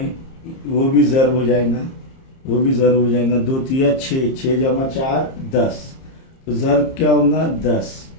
वो भी ज़र हो जाएगा, वो भी ज़र हो जाएगा, 2 तिया 6, 6 जमा 4 10, तो ज़र क्या होगा 10,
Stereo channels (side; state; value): right; late; 30 ms